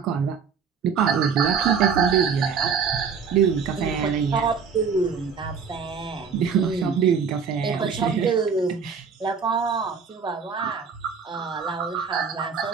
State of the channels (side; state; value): left; quieter; 6.1 dB